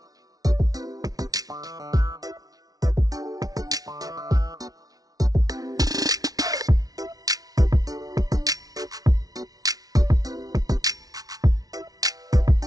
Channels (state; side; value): late; left; 0.18 ms